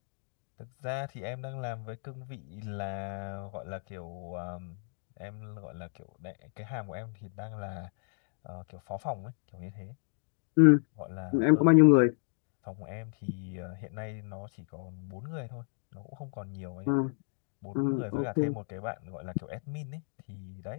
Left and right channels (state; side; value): silent; right; digital silence